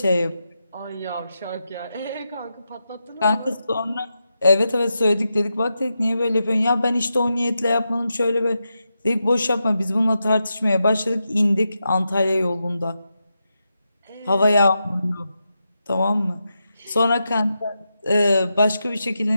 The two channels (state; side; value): inverted; both; correlation -0.88